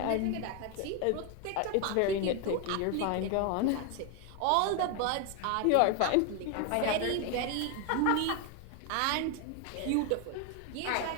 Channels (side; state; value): both; different; correlation 0.01